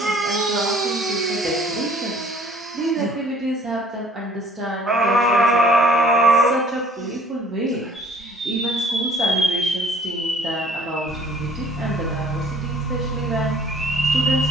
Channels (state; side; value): normal; both; correlation 0.56